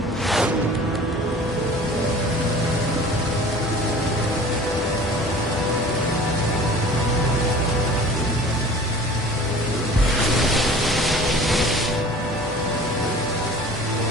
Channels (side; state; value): both; normal; correlation 0.43